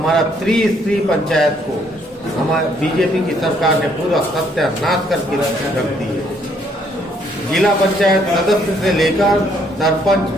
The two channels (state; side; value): normal; both; correlation 0.68